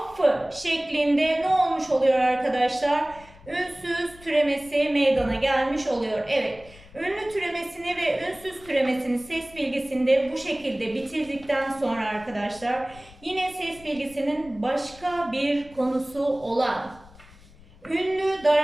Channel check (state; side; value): noise; left; rumble, 23 dB below the sound